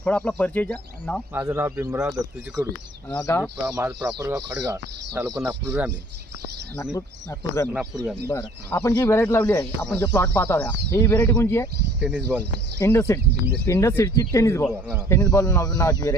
थोडा आपला परिचयचा नाव। माझं नाव भीमराव दत्तूजी कडू, गाव माझं प्रॉपर गाव खडगाव, तालुका नागपूर ग्रामीण। नागपूर ग्रामीण। बरं, आपण जी व्हेरायटी लावली आहे, आपण जे प्लॉट पाहत आहोत ही व्हेरायटी कोणची आहे? टेनिस बॉल, इंडस सीडची टेनिस बॉल नावाची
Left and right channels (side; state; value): both; normal; correlation 0.54